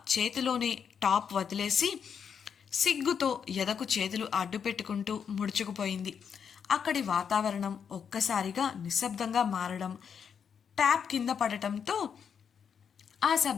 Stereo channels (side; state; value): right; quieter; 7.2 dB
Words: చేతిలోనే టాప్ వదిలేసి సిగ్గుతో ఎదకు చేతులు అడ్డు పెట్టుకుంటూ ముడుచుకుపోయింది. అక్కడి వాతావరణం ఒక్కసారిగా నిశ్శబ్దంగా మారడం, ట్యాప్ కింద పడటంతో ఆ